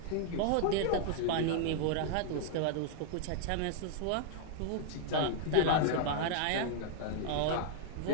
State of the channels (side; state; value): both; different; correlation -0.01